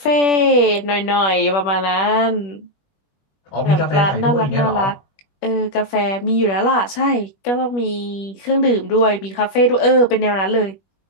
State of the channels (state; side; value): late; right; 21 ms